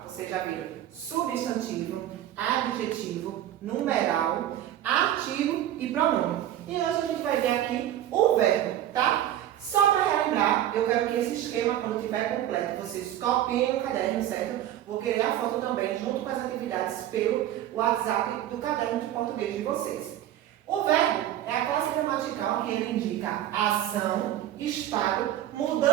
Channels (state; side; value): quieter; left; 12.2 dB